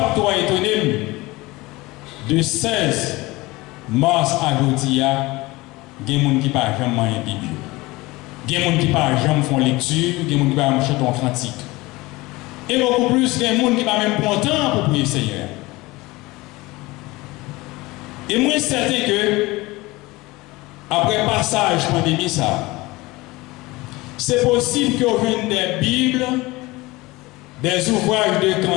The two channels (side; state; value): right; quieter; 21.3 dB